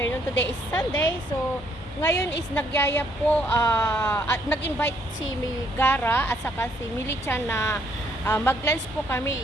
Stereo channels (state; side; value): normal; both; correlation 0.69